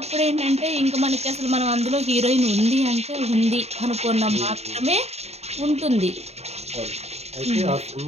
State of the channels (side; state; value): left; late; 0.31 ms